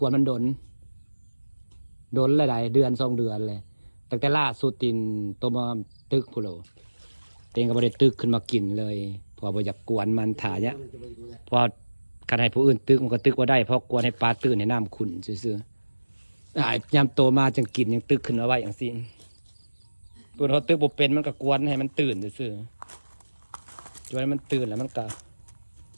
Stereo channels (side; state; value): both; inverted; correlation -1.00